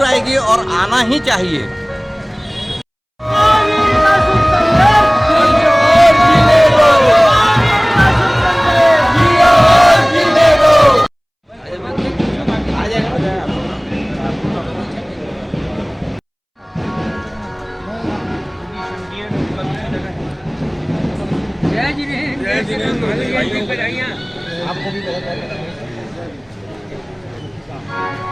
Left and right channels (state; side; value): identical; both; correlation 1.00